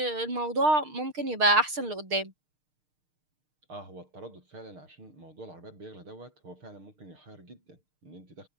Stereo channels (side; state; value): left; late; 6.5 ms